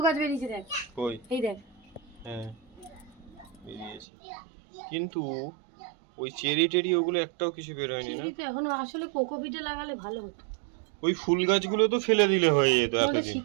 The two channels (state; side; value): drops out; left; at 4.0 s